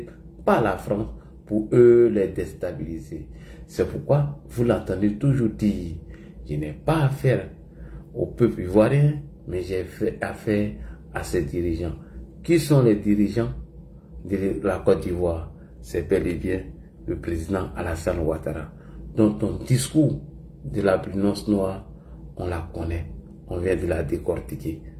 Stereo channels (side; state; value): both; identical; correlation 1.00